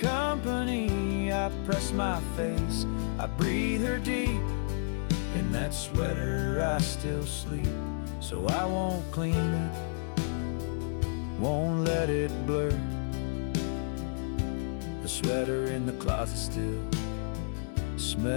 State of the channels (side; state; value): right; silent; digital silence